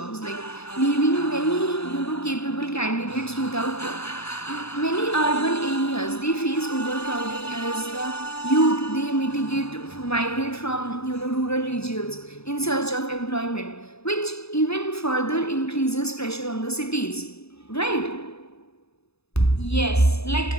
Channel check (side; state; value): right; late; 0.79 ms